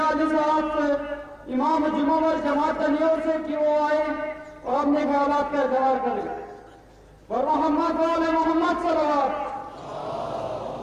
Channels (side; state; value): both; identical; correlation 1.00